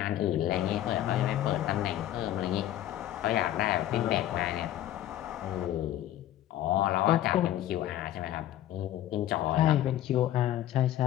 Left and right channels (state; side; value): quieter; right; 12.7 dB